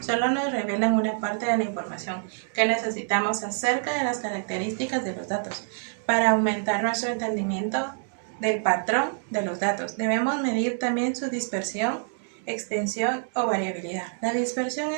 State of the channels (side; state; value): left; silent; digital silence